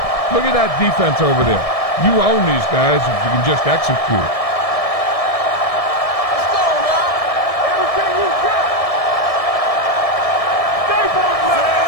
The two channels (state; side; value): late; right; 1.7 ms